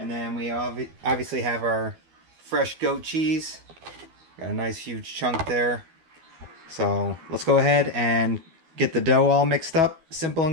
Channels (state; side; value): late; left; 12 ms